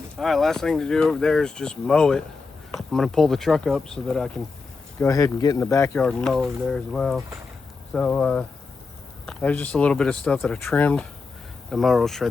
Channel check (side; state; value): right; quieter; 4.4 dB